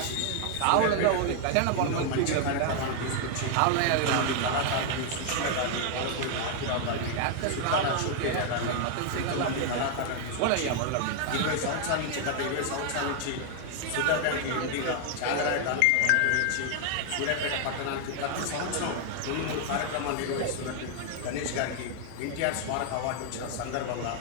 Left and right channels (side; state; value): both; different; correlation 0.00